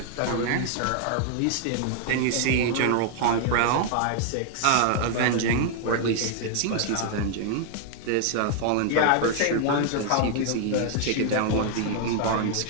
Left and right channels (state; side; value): different; both; correlation 0.00